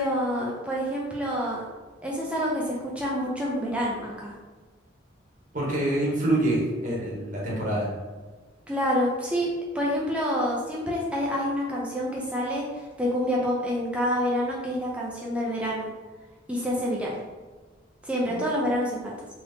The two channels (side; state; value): both; normal; correlation 0.48